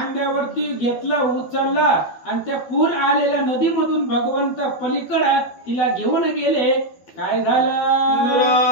घेतलं, उचललं आणि त्या पूर आलेल्या नदीमधून भगवंत पलीकडे तिला घेऊन गेले. काय झालं?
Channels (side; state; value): right; late; 12 ms